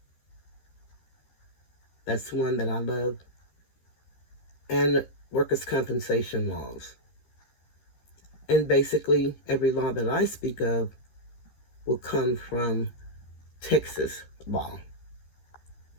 That's one that I love. And workers' compensation laws. And basically, every law that I speak of will come from Texas law.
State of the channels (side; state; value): right; late; 13 ms